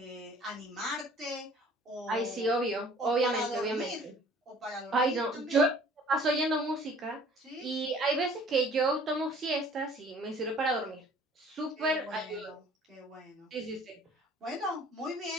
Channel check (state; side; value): normal; both; correlation 0.52